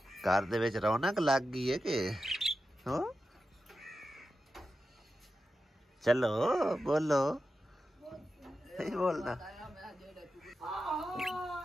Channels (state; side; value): normal; both; correlation 0.91